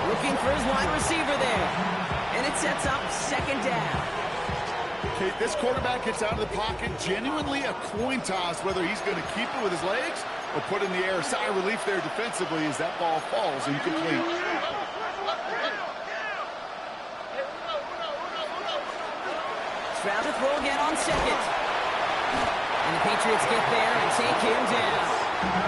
Looking for his wide receiver there. And it sets up second down. Okay, this quarterback gets out of the pocket. Genuinely a coin toss whether he's going to keep it with his legs or put in the air. Sigh of relief there defensively as that ball falls incomplete. Stroud to throw again on second. And the Patriots get there and take him down.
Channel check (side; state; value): both; identical; correlation 1.00